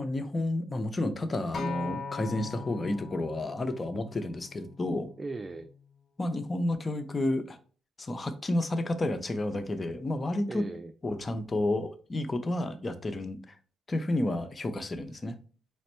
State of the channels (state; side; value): normal; both; correlation 0.90